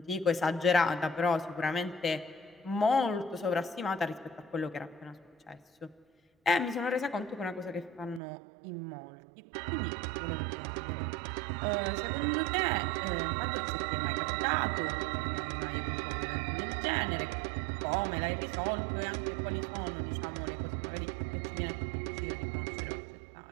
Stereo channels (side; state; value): left; drops out; at 8.2 s